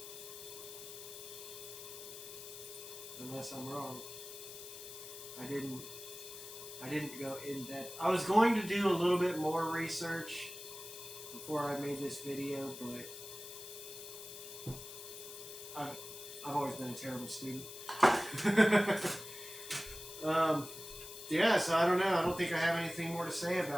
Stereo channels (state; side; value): noise; left; hiss, 12 dB below the sound